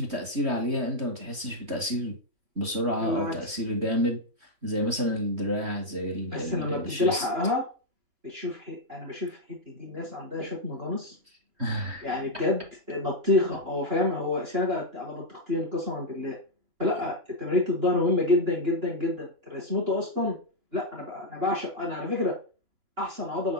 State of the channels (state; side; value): late; left; 3.1 ms